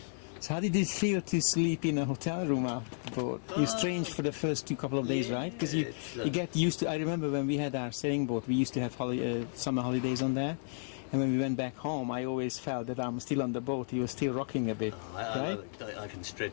So how did it feel to sleep in a hotel room after the boat? You strange for the first couple of days, right? Because you get used to. I remember when we had our sailing boat, we used to have summer holidays on there, and when we went back home, I always felt that I'm still on the boat. You were still rocking a bit, right? I can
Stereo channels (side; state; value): right; silent; digital silence